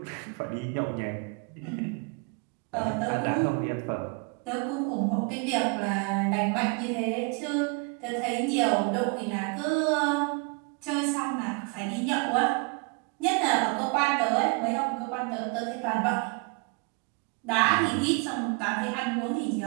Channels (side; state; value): left; quieter; 32.7 dB